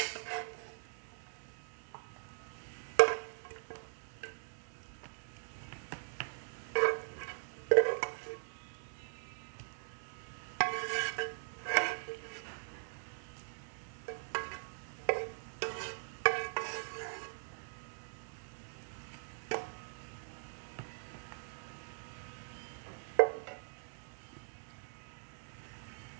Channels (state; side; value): silent; left; digital silence